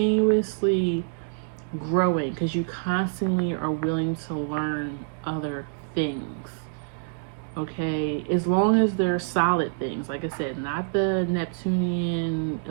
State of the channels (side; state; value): left; silent; digital silence